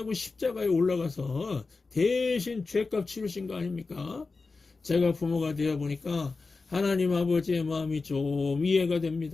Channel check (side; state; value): right; quieter; 4.0 dB